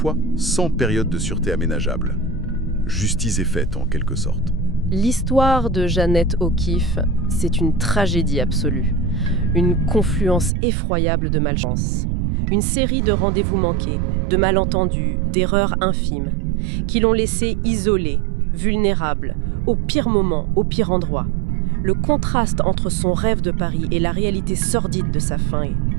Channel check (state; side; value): drops out; left; at 10.5 s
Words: sans période de sûreté aménageable. Justice est faite, en quelque sorte. L'histoire de Jeannette O'Keeffe, c'est une tragédie absolue. Une confluence effroyable de malchance. Une série de rendez-vous manqués, de malentendus, d'erreurs infimes, qui l'ont laissée isolée, vulnérable, au pire moment, au pire endroit. Le contraste entre son rêve de Paris et la réalité sordide de sa fin est